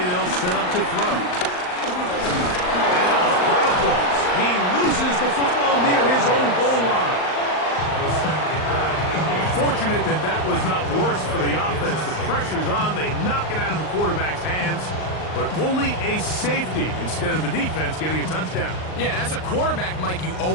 they'll set up to throw. He loses the football near his own goal line. Fortunate that that was not worse for the offense. The pressure's on. They knock it out of the quarterback's hands, but only a safety instead of the defense getting a touchdown. Yeah, and as a quarterback, Mike, you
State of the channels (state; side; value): late; right; 39 ms